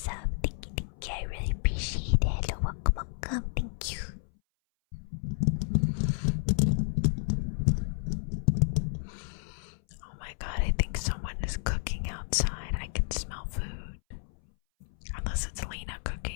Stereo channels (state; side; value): silent; right; 57 dB below the other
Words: Thank you, thank you. I really appreciate it. Hello, welcome, welcome. Thank you. Oh my god, I think someone is cooking outside. I can smell food. Unless it's Lena